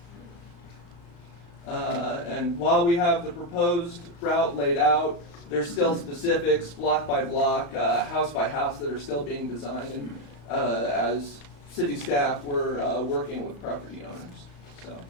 And while we have the proposed route laid out, there's still specifics, block by block, house by house, that are still being designed, and as city staff, we're working with property owners. So,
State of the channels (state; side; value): late; right; 35 ms